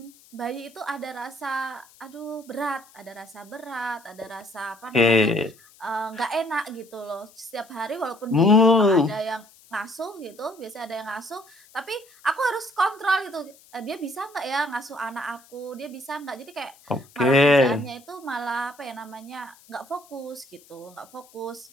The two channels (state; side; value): noise; left; hiss, 26 dB below the sound